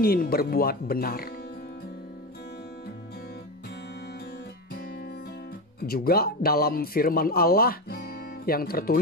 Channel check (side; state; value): both; normal; correlation 0.18